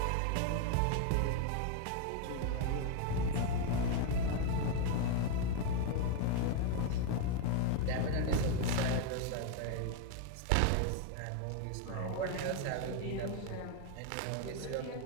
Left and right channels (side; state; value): both; different; correlation 0.00